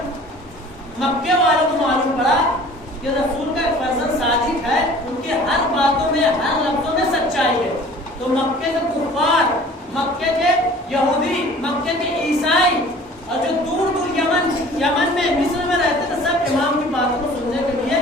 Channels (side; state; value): both; normal; correlation 0.47